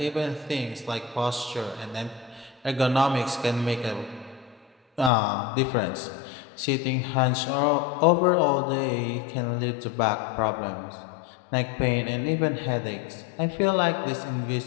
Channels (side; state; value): right; drops out; at 5.1 s